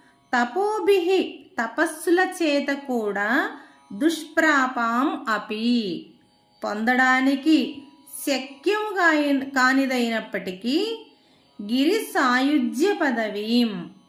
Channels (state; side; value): identical; both; correlation 1.00